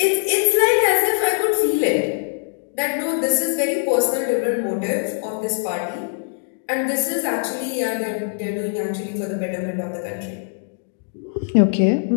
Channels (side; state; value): right; silent; digital silence